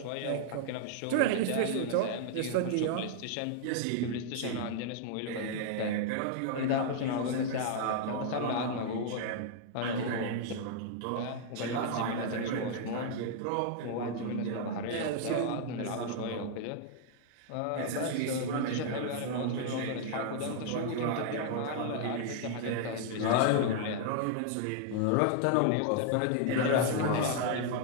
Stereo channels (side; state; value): both; different; correlation -0.01